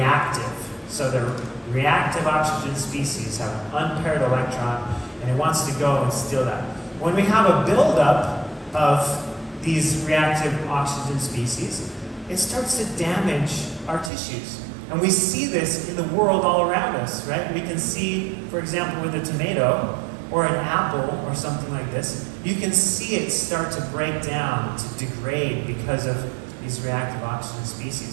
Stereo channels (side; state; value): left; drops out; at 14.1 s